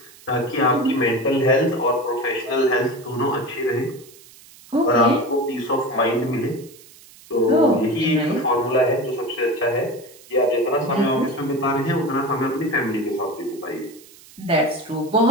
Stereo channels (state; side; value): noise; right; hiss, 23 dB below the sound